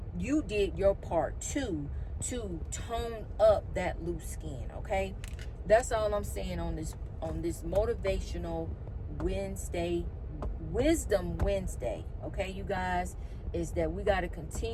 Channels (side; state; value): both; identical; correlation 1.00